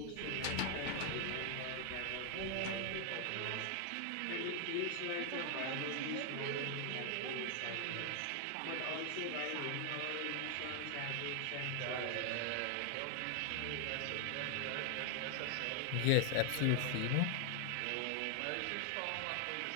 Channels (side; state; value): both; different; correlation 0.00